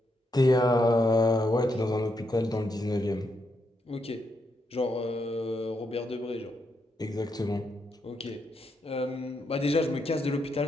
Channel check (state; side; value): normal; both; correlation 0.80